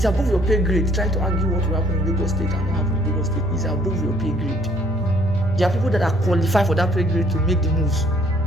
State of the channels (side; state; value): both; normal; correlation 0.62